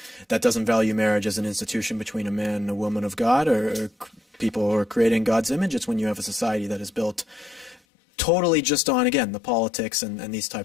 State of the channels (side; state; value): right; drops out; at 7.8 s